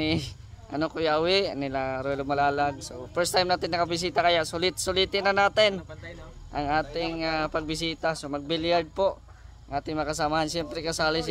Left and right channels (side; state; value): both; identical; correlation 1.00